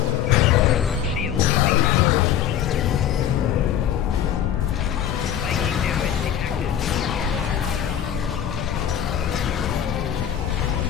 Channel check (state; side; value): quieter; right; 9.9 dB